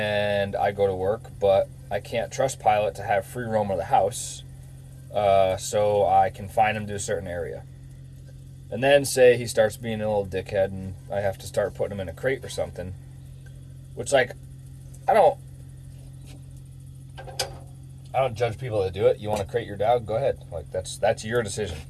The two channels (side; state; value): both; identical; correlation 1.00